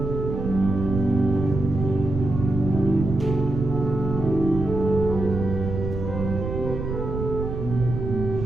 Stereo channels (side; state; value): right; noise; rumble, 5 dB below the sound